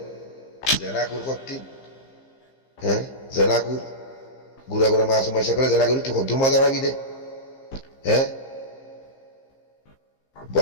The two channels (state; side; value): late; right; 15 ms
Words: জেনাকুর করতি হ্যাঁ জেনাকুর ঘুরা ঘুরা মাছ মাসে করে জেনাকুর তুই কদ্দুর মজা পাবি দে হ্যাঁ